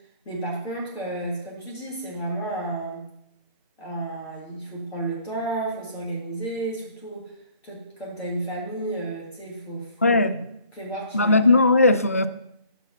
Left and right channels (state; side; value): inverted; both; correlation -0.58